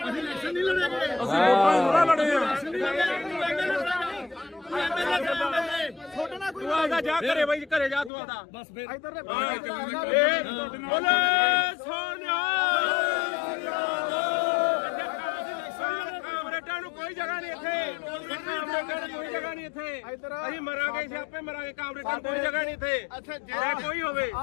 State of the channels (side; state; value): right; drops out; at 8.1 s